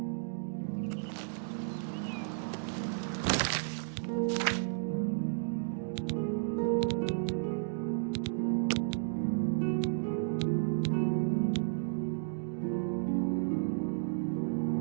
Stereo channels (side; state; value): left; silent; digital silence